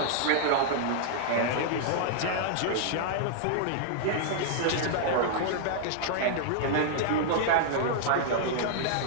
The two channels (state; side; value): different; both; correlation -0.01